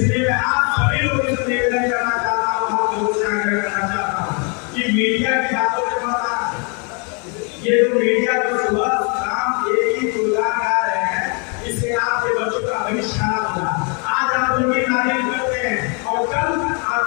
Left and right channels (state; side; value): quieter; right; 35.8 dB